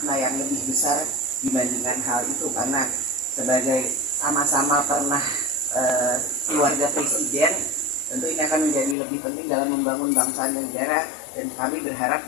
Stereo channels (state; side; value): drops out; right; at 9.0 s